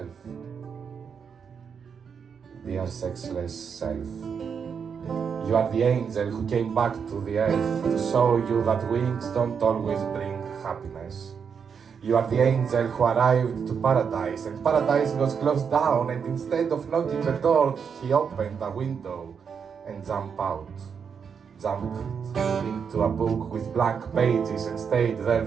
Dear sexless self, you are the angel who came back to the earth to show you that wings don't always bring happiness. You are the angel who arrived to paradise, and paradise was closed down, and instead of knocking the door, he opened a window and jumped out. Jumped into a book with blank pages and stayed there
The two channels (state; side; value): quieter; left; 6.6 dB